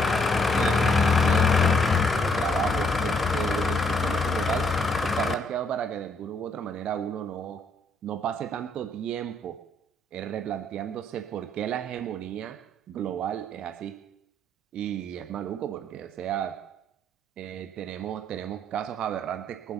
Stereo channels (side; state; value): both; normal; correlation 0.69